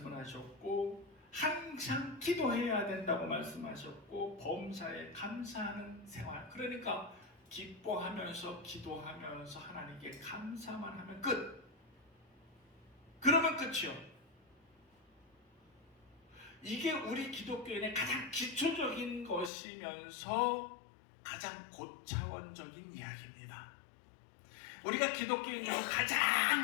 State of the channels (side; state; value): right; drops out; at 19.5 s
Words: 하셨고, 항상 기도해야 된다고 말씀하셨고, 범사에 감사하는 생활. 그러니까 기뻐하면서 기도하면서 하나님께 감사만 하면 끝. 그러면 끝이요. 이게 우리 기독교인의 가장 기초적인 것이면서 가장 고차원적인 이야기입니다. 우리가 기독교인으로 가장